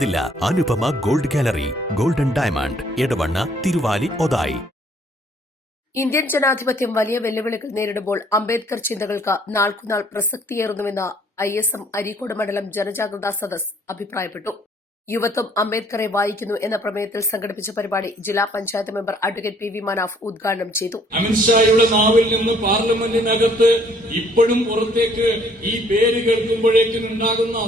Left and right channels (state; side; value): normal; both; correlation 0.61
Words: Anupama gold gallery, golden diamond, Edavanna, Thiruvali, Othayi. Indian ജനാധിപത്യം വലിയ വെല്ലുവിളികൾ നേരിടുമ്പോൾ അംബേദ്കർ ചിന്തകൾക്ക് നാൾക്കുനാൾ പ്രസക്തിയേറുന്നുവെന്ന് ISM അരീക്കോട് മണ്ഡലം ജനജാഗ്രതാ സദസ് അഭിപ്രായപ്പെട്ടു. യുവത്വം അംബേദ്കറെ വായിക്കുന്നു എന്ന പ്രമേയത്തിൽ സംഘടിപ്പിച്ച പരിപാടി ജില്ലാ panchayat member advocate PV Manaf ഉദ്ഘാടനം ചെയ്തു. അമിത്ഷായുടെ നാവിൽ നിന്ന് പാർലമെന്റിനകത്ത് ഇപ്പോഴും പുറത്തേക്ക് ഈ പേര് കേൾക്കുമ്പോഴേക്കും ഉണ്ടാകുന്ന